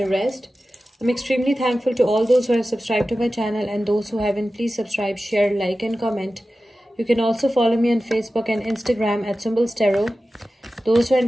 rest. I'm extremely thankful to all those who have subscribed to my channel, and those who haven't, please subscribe, share, like and comment. You can also follow me on Facebook and Instagram at Symbols Tarot. Those who are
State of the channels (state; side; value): normal; both; correlation 0.94